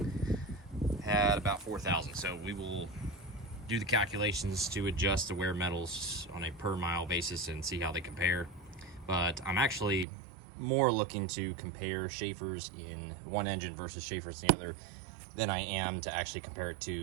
had about 4,000. So we will do the calculations to adjust the wear metals on a per mile basis and see how they compare. But I'm actually more looking to compare Schaefer's in one engine versus Schaefer's in the other than I am to actually compare it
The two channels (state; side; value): drops out; left; at 10.1 s